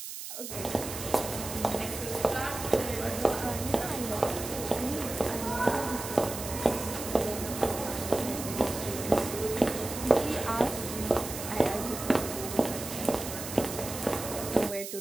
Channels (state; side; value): noise; right; hiss, 8 dB below the sound